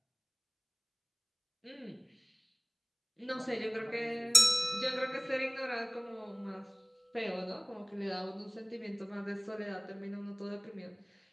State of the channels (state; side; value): identical; both; correlation 1.00